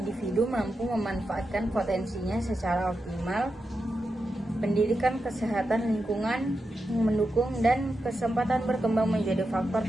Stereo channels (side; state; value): both; normal; correlation 0.88